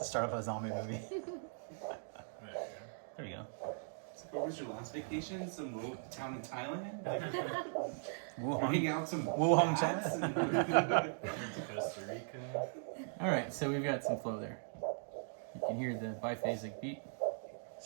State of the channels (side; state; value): left; silent; digital silence